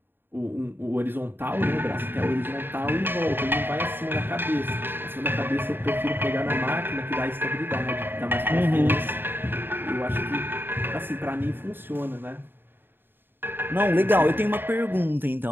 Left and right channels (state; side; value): late; left; 0.098 ms